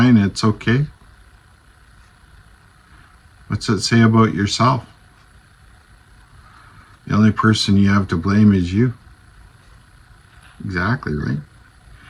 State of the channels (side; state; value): both; identical; correlation 1.00